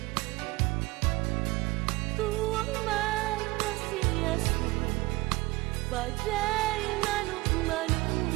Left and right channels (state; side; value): quieter; left; 21.8 dB